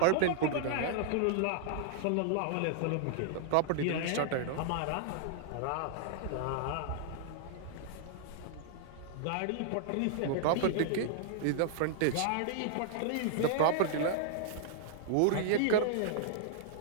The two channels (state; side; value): different; both; correlation -0.01